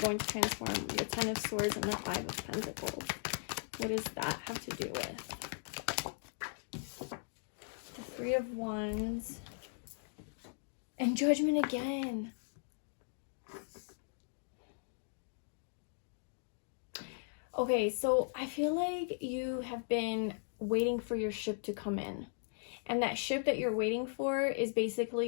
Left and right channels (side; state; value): right; silent; digital silence